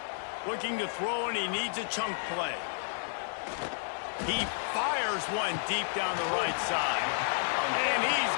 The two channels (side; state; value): right; silent; digital silence